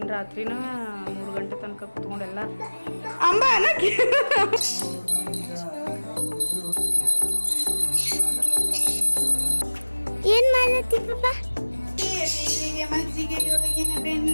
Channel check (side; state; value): both; inverted; correlation -1.00